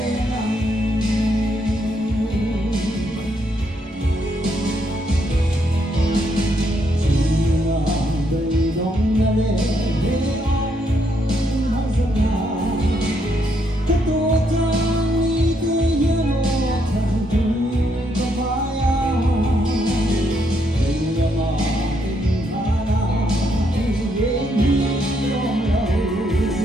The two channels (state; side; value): normal; both; correlation 0.75